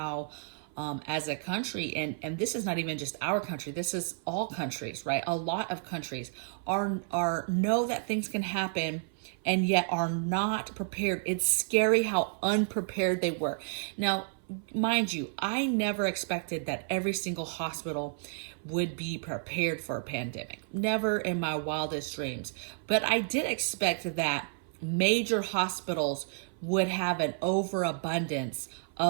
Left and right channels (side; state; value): left; silent; 57 dB below the other